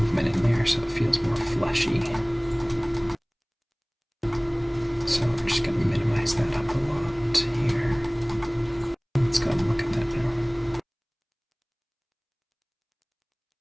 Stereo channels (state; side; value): identical; both; correlation 1.00